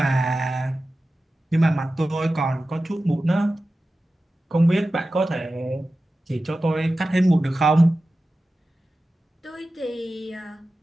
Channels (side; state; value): both; normal; correlation 0.94